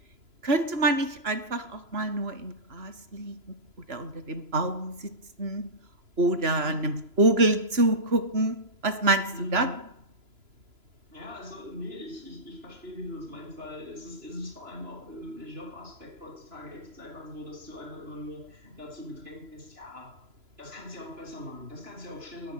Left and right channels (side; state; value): left; late; 3.0 ms